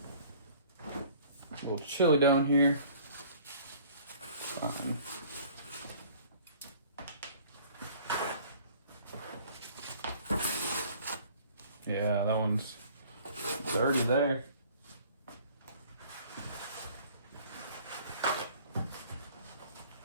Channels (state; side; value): inverted; both; correlation -0.52